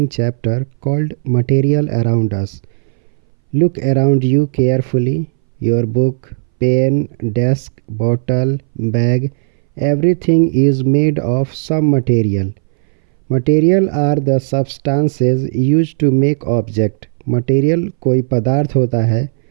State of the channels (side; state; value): left; silent; 64 dB below the other